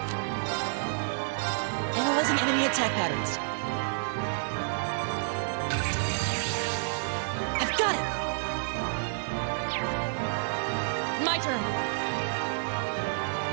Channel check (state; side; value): silent; left; digital silence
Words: Analyzing enemy attack patterns. I've got it! My turn.